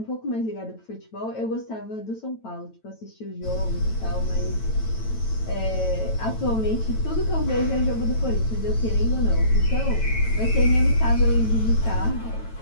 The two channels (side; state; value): right; late; 9.0 ms